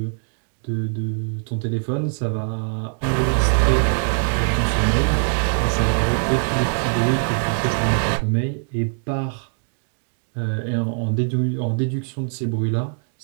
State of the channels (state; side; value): silent; left; 64 dB below the other